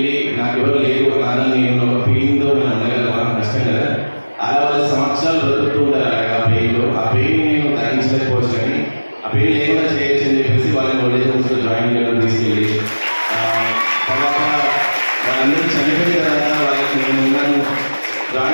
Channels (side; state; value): both; inverted; correlation -1.00